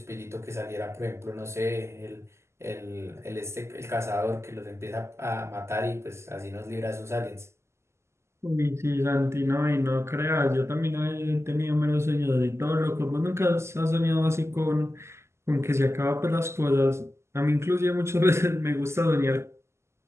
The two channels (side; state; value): left; late; 0.13 ms